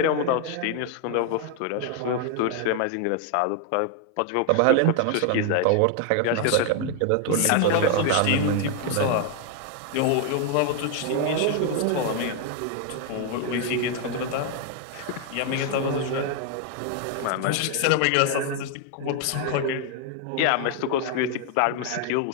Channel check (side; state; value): both; different; correlation 0.00